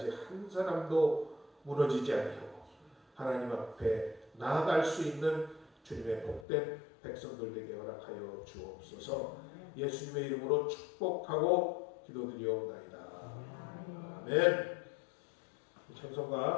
한 사람도 무너지지 아니하고 하나님 앞에 나아갈 수 있는 주님의 복된 백성들 되게 허락하여 주옵소서. 예수님의 이름으로 축복하고 기도드리옵나이다. 아멘.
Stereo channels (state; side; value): drops out; right; at 6.5 s